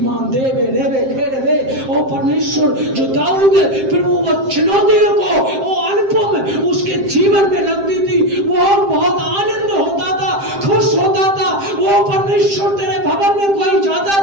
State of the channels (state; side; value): late; left; 7.6 ms